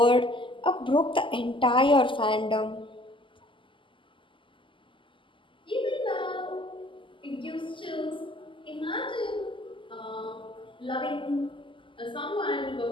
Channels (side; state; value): right; late; 0.25 ms